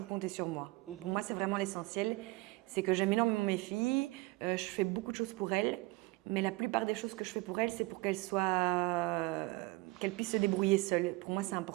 compter sur moi. Pour moi, c'est vraiment l'essentiel. C'est que j'aime énormément mes filles, je fais beaucoup de choses pour elles, mais la plupart des choses que je fais pour elles, c'est pour qu'elles puissent se débrouiller seules. Pour moi, c'est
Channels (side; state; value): left; quieter; 22.7 dB